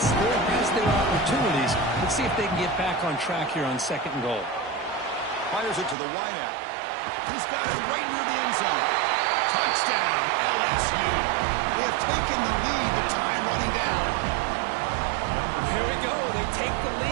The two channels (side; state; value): left; drops out; at 6.0 s